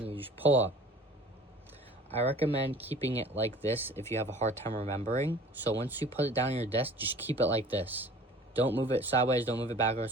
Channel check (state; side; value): normal; both; correlation 0.46